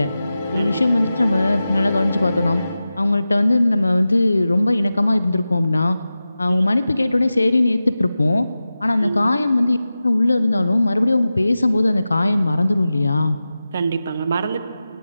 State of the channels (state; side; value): inverted; both; correlation -0.94